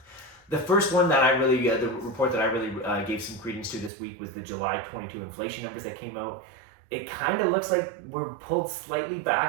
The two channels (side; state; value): left; drops out; at 3.9 s